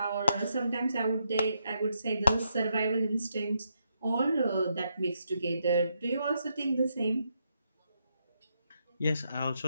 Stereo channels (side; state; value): both; inverted; correlation -0.80